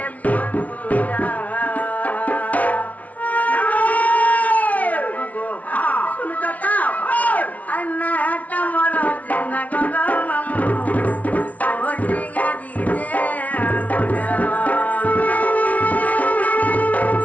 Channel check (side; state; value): right; late; 0.069 ms